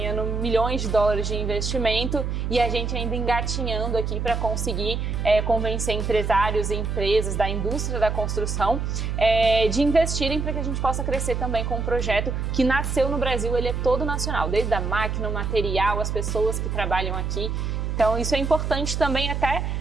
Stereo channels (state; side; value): noise; right; hum, 2 dB below the sound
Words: milhões de dólares de investimento e a gente ainda engatinhando aqui para conseguir convencer empresários e empresas da indústria da construção de investirem para que a gente possa crescer também com um projeto que nasceu no Brasil. Ele é todo nacional, desde a máquina, o material, as pessoas que trabalham aqui. Então isso é importante também até